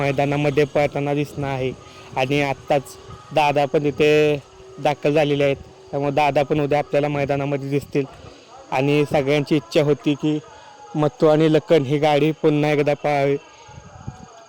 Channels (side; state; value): both; identical; correlation 1.00